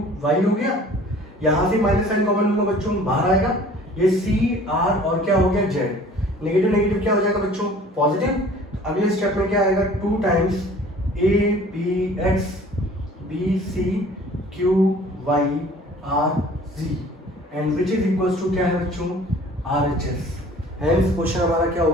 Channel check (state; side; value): normal; both; correlation 0.49